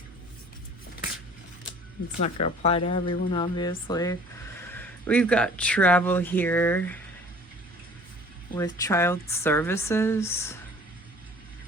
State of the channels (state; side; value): normal; both; correlation 0.50